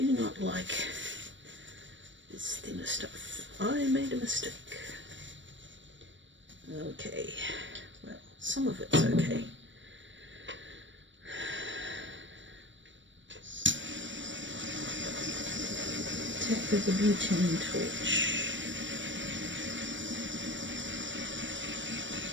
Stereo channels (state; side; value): late; left; 0.54 ms